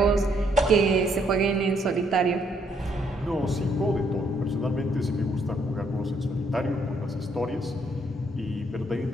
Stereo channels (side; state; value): both; normal; correlation 0.70